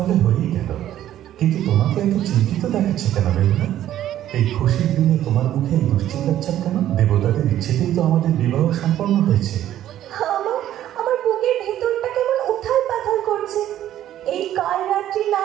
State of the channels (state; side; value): quieter; left; 12.2 dB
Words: হয়েই গেল। কিন্তু তোমাকে এত চিন্তিত দেখাচ্ছে কেন বেহুলা? এই খুশির দিনে তোমার মুখে দুশ্চিন্তার ছাপ কেন? দেবতাদের ইচ্ছেতেই তো আমাদের বিবাহ সম্পন্ন হয়েছে। আমার বুকের ভেতরটা কেমন উথাল পাথাল করছে। এই কাল রাত্রি না